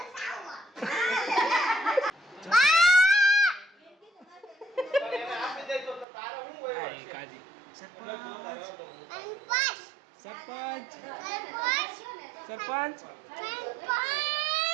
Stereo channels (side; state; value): left; drops out; at 6.1 s